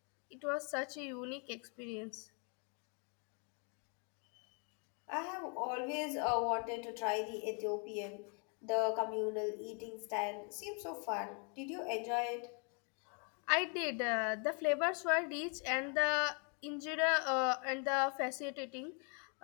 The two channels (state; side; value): quieter; right; 38.3 dB